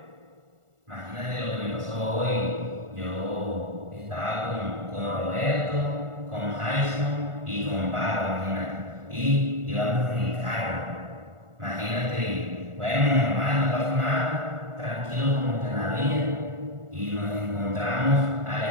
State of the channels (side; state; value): left; late; 1.4 ms